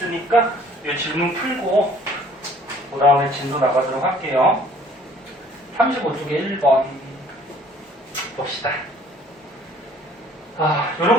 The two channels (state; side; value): normal; both; correlation 0.56